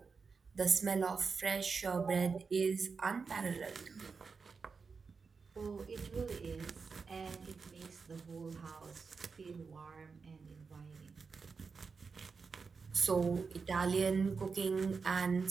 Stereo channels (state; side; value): quieter; left; 5.0 dB